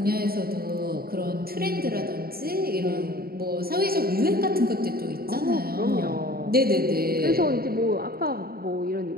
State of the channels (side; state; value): left; late; 0.44 ms